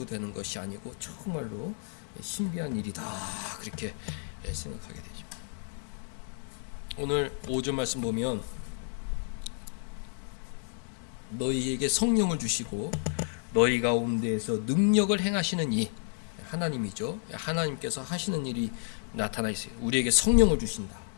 되는 것이 아니고 정말로 신비한 일이다. 그렇게 생각하게 되죠. 오늘 5절 말씀 보면 너희에게 성령을 주시고 너희 가운데에서 능력을 행하시는 이 하나님이죠. 하나님께서 하시는 일이 나타나 있어요. 우리에게 성령을 주신다.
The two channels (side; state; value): right; silent; 57 dB below the other